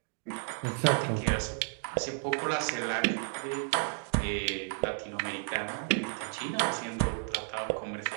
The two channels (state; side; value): silent; left; 56 dB below the other